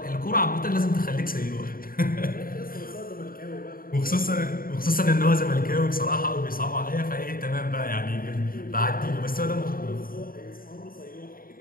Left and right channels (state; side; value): late; right; 0.42 ms